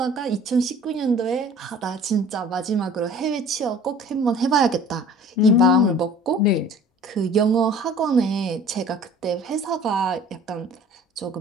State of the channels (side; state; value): both; normal; correlation 0.47